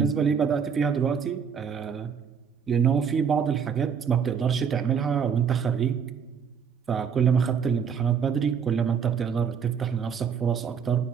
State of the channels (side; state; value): left; quieter; 7.0 dB